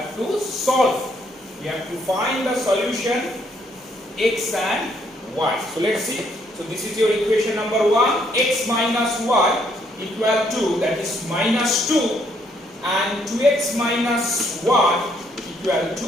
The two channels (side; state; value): both; normal; correlation 0.70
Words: to solve. We have to find the solution x and y. So let's see. So this is your equation number 1, x minus y equal to, that is minus 2, and 2x minus y equal to